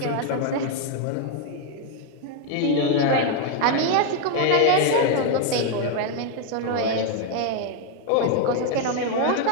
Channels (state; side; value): different; both; correlation 0.01